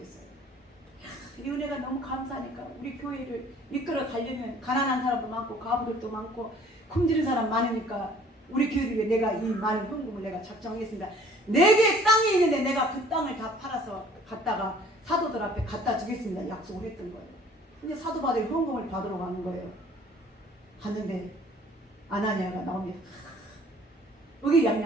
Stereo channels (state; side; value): normal; both; correlation 0.53